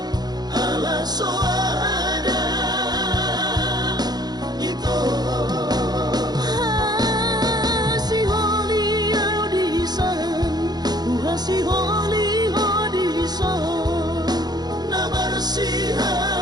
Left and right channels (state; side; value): late; left; 0.20 ms